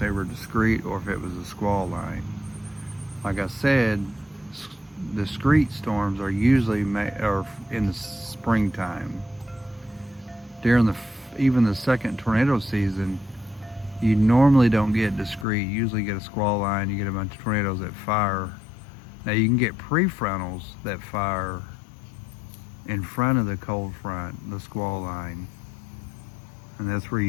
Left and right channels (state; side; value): drops out; right; at 15.5 s